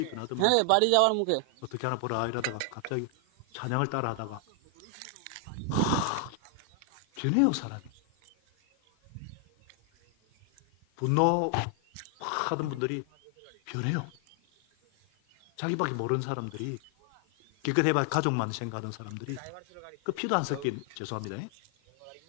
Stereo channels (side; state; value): both; different; correlation 0.00